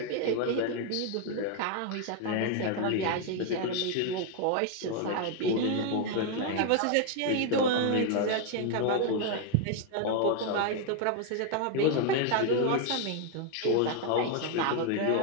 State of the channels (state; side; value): different; both; correlation 0.01